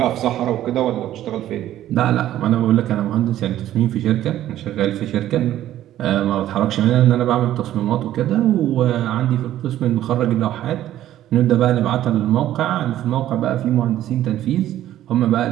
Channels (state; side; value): quieter; left; 12.8 dB